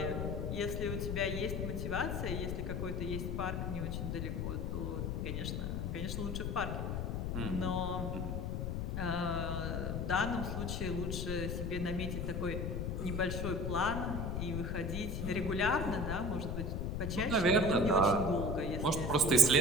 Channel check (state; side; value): noise; left; rumble, 1 dB below the sound